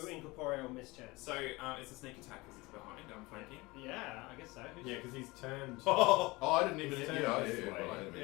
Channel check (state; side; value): quieter; right; 22.7 dB